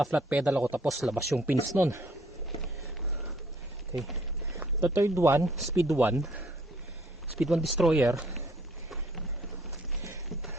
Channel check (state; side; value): normal; both; correlation 0.62